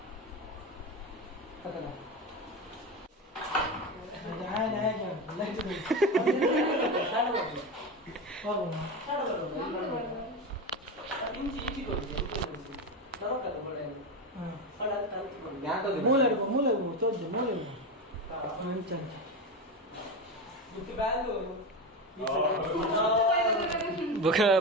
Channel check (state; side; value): normal; both; correlation 0.18